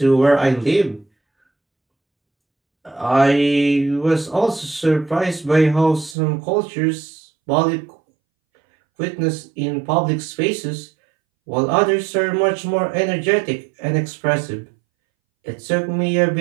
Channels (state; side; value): drops out; left; at 6.2 s